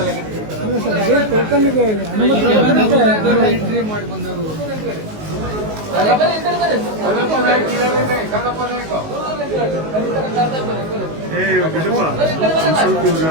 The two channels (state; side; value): late; left; 19 ms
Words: ಟೋಕನ್ಗೆ ಎಂಟ್ರಿ ಮಾಡಿ ಬಂದರು. ಬಿಡಪ್ಪ, ಸ್ವಲ್ಪ